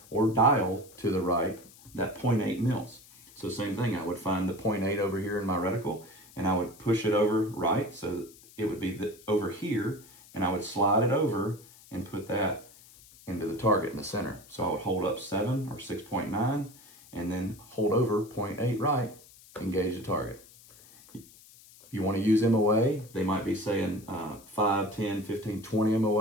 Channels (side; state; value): left; noise; hiss, 23 dB below the sound